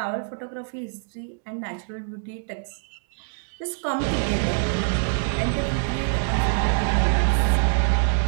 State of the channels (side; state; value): left; silent; digital silence